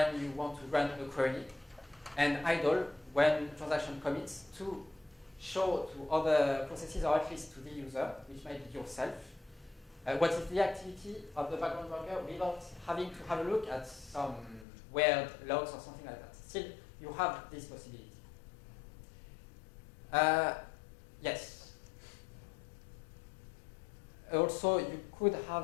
you want to run a query, and idle when transaction commits to show to other processes, or at least to the user, which might be yourself, what is the activity of the background worker without having to have a look at some weird logs or something like that. Still, you have this possibility. Yes. Also, you could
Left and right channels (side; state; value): right; drops out; at 14.7 s